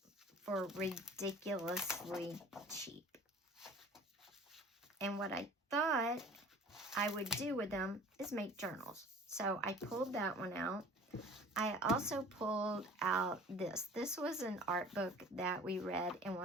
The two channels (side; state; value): both; normal; correlation 0.46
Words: for ridiculously cheap. And what I thought I would do with them is make journals. So I pulled that one out. I also pulled out this. This was an art book that we read in